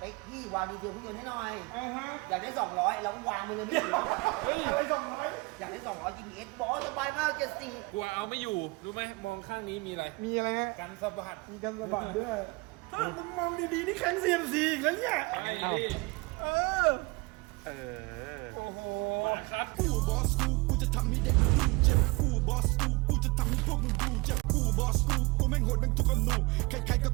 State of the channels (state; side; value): quieter; left; 26.1 dB